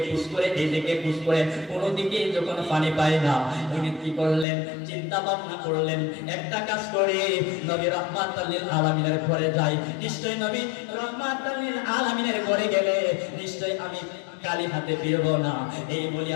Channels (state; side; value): drops out; right; at 4.5 s